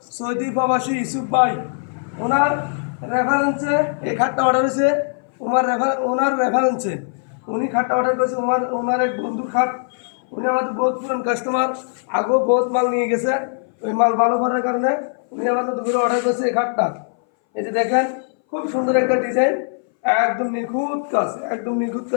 সৌদি প্রবাসী ইউসুফ ভাই। ওনার রেফারেন্সে এই খাটটা অর্ডার হয়েছে। ওনার রেফারেন্সে উনি খাটটা অর্ডার করেছে। ওনার এক বন্ধুর খাট। উনি আমাদের বহুত পুরান কাস্টমার, আগেও বহুত মাল নিয়ে গেছে। ওই মাল ভালো করার কারণে উনি আমাদের দুপুরে অর্ডার করেছে এই খাটটা। এই যে দেখেন, খুব সুন্দর একটা ডিজাইন, একদম নিখুঁত কাজ, একদম নিখুঁত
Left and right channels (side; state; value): right; silent; 61 dB below the other